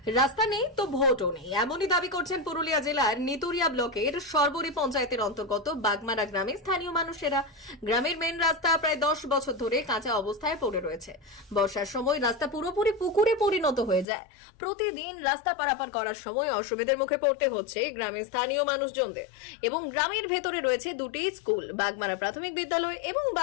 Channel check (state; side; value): drops out; right; at 14.1 s